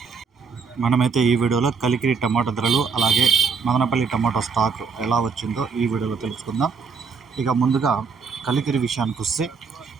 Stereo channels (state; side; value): quieter; left; 5.3 dB